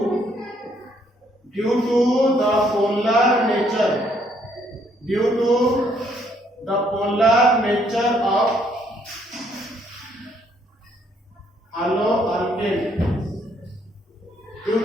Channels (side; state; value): both; normal; correlation 0.68